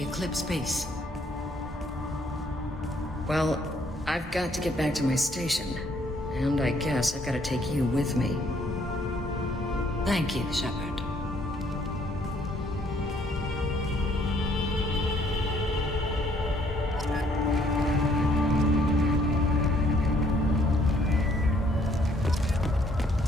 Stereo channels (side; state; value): both; normal; correlation 0.65